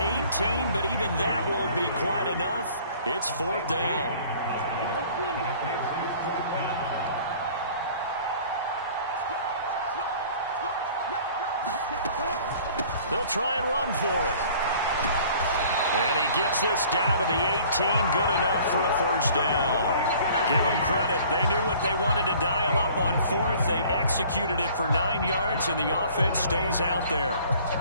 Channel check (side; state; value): both; inverted; correlation -0.51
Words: 18, but even that won't be quite enough. It's 4th down. They'll try and run for it. And he gets this down to the 18. Good enough for a 1st down. Give them credit. They knew what they wanted to dial up on 4th. They executed it for 9 yards, and the offense stays out there.